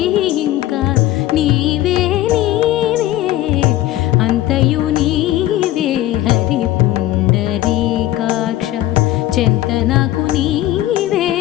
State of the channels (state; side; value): quieter; right; 14.7 dB